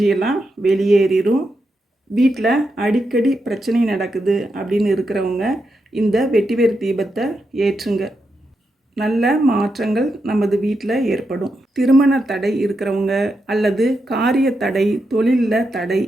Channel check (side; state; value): both; normal; correlation 0.85